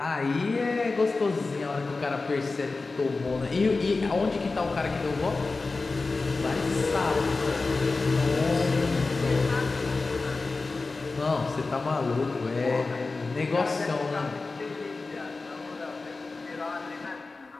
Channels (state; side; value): quieter; right; 3.7 dB